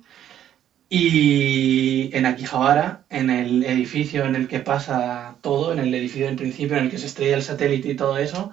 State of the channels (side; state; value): left; quieter; 10.8 dB